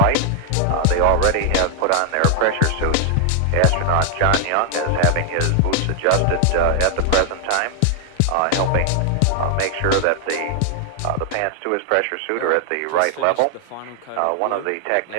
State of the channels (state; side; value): different; both; correlation 0.00